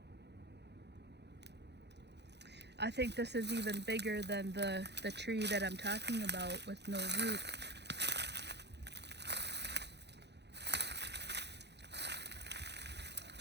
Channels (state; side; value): late; left; 0.50 ms